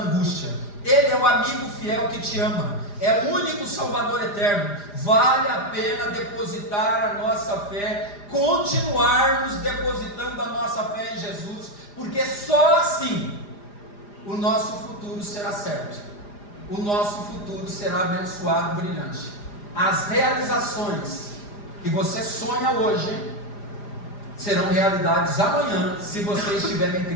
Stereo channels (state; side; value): late; right; 4.9 ms